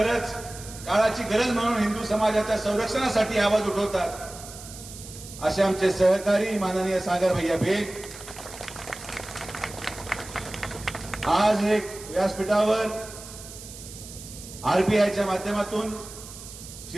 काळाची गरज म्हणून हिंदू समाजाच्या संरक्षणासाठी आवाज उठवतात असे आमचे सहकारी माननीय सागर भैया बेग, आज एक व्यासपीठावर आरपीआयच्या माध्यमातून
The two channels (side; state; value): right; noise; hiss, 14 dB below the sound